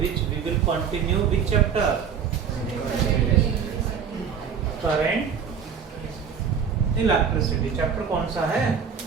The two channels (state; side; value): quieter; left; 7.0 dB